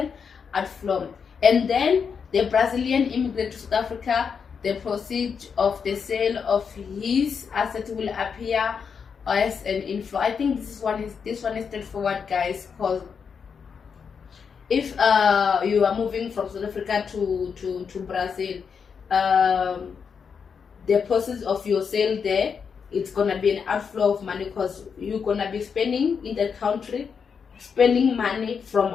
outflow, and then the Brazilian immigrant to South Africa. The proceeds of the sale of his assets will appear as an inflow. I think this one is straightforward, guys, because if you are moving from South Africa to Brazil, the process of your sale there, it's gonna be an outflow of money, because you're gonna be spending in the country, spending money from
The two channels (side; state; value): right; quieter; 6.3 dB